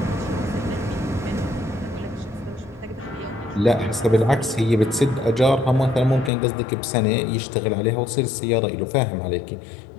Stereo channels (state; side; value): drops out; right; at 6.3 s